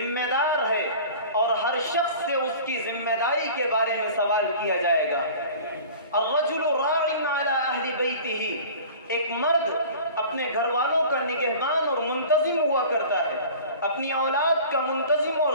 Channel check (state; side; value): inverted; both; correlation -0.41